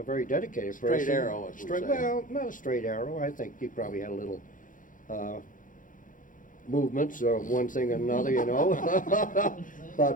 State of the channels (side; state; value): right; late; 0.38 ms